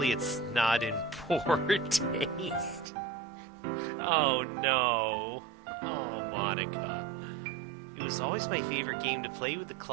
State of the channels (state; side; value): drops out; left; at 2.9 s